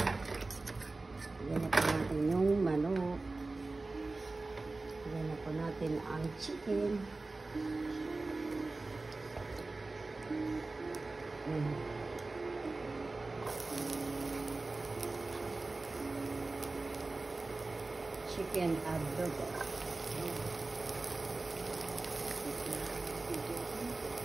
Yan na po natin yung manok. Yan na po natin ang chicken. Chicken adobo.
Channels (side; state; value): left; quieter; 3.4 dB